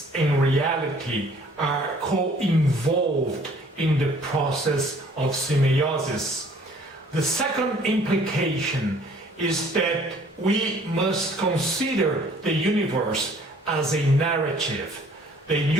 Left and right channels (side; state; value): both; normal; correlation 0.56